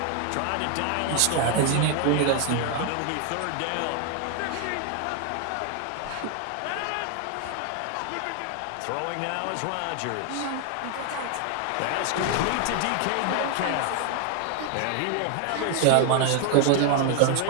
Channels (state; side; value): different; both; correlation 0.00